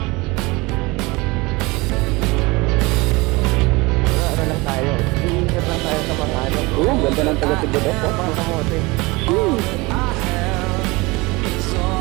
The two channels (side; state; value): left; quieter; 23.9 dB